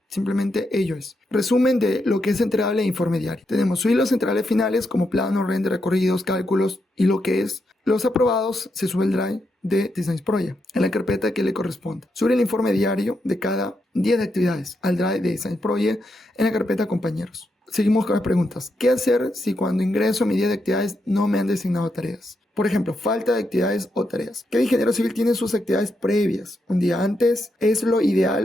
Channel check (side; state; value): both; normal; correlation 0.83